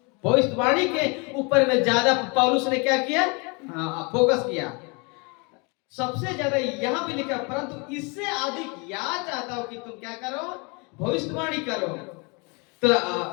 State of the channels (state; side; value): quieter; right; 30.9 dB